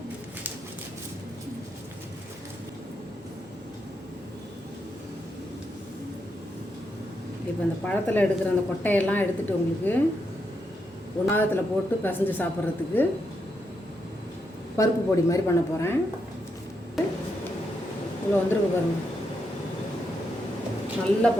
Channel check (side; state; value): both; normal; correlation 0.82